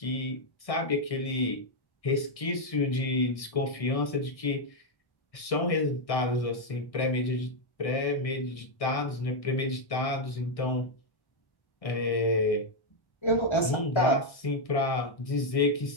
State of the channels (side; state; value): right; late; 1.6 ms